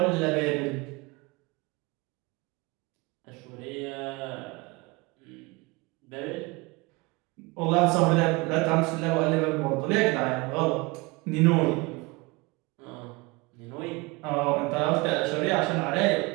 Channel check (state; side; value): quieter; left; 25.1 dB